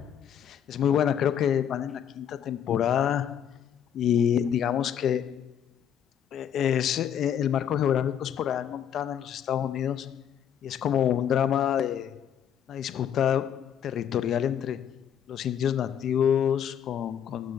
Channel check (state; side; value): quieter; right; 9.0 dB